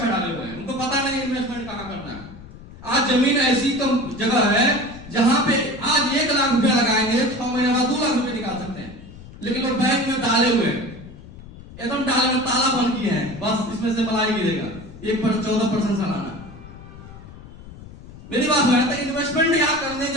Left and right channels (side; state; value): left; noise; rumble, 17 dB below the sound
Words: डाले हुए हैं, उनको पता नहीं इन्वेस्टमेंट कहां करना है। आज जमीन ऐसी जगह है जहां पे आज 1 लाख रुपया लगाएंगे, 6 महीने बाद 2 लाख रुपए निकाल सकते हैं, लेकिन वो बैंक में डाले हुए हैं, एकदम डाले में ताला बंद किए हैं, बस इसमें से मलाई गिरेगा 14% सालाना। मेरी बात है, तो इन्वेस्टमेंट यहाँ करने